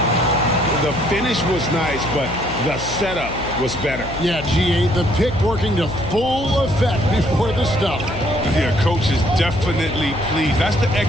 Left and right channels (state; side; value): noise; left; hum, 10 dB below the sound